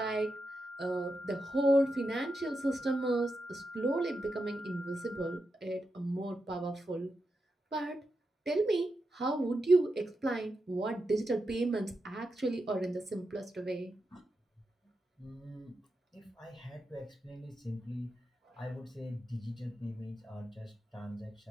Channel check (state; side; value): normal; both; correlation 0.87